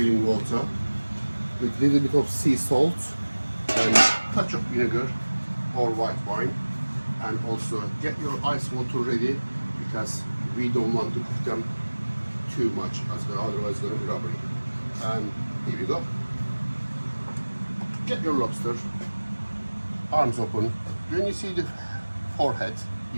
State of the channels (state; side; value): inverted; both; correlation -1.00